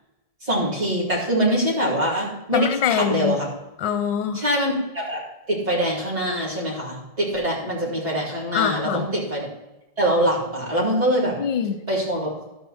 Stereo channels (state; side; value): late; left; 1.7 ms